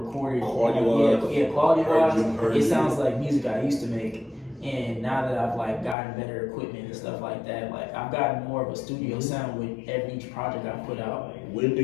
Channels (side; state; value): right; drops out; at 6.0 s